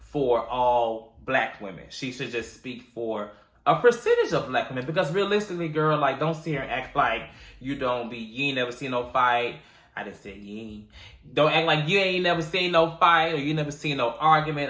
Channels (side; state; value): both; identical; correlation 1.00